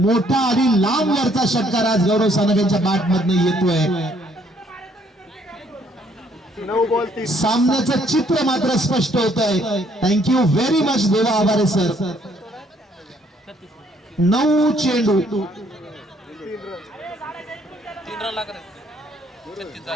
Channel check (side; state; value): both; normal; correlation 0.66